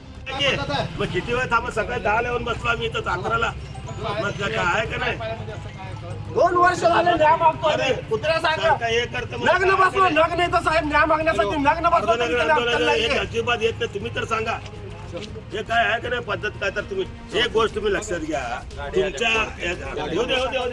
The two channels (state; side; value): identical; both; correlation 1.00